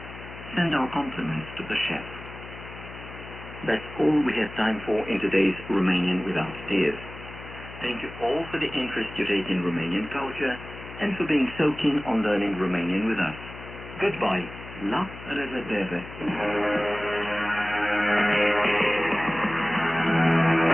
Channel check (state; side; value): noise; left; hum, 14 dB below the sound